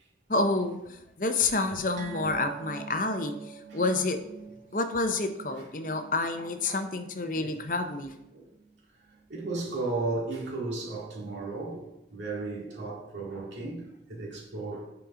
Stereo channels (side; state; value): both; normal; correlation 0.12